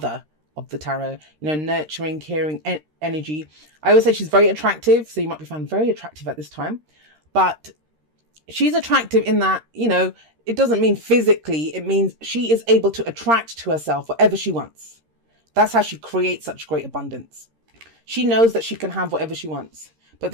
of the tarot, you know, nurturing, caring energy. I always say she's very attractive. So you might be found very attractive at this time, but she's attractive in that, you know, it doesn't mean physically. It means she is able to attract to herself whatever she wants. That's how she creates such great abundance. She knows that she can have whatever she wants. But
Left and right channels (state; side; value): late; left; 13 ms